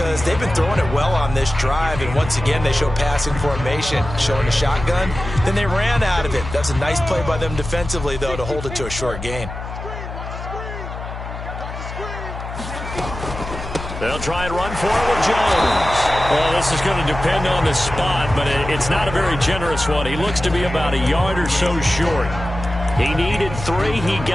they've been throwing it well on this drive, and once again they show passing formation, showing the shotgun. Then they ran out of it. That's a nice play by them defensively, though, to hold it to a short gain. They'll try and run for it with Jones. Well, this is going to depend on the spot, but it's not a very generous one. He looks to be about a yard or so short. He needed 3. He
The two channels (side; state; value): left; noise; hum, 9 dB below the sound